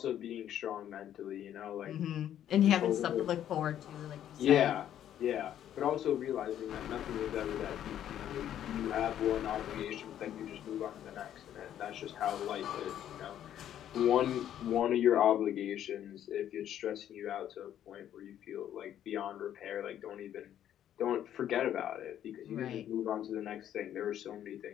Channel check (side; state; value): right; quieter; 10.8 dB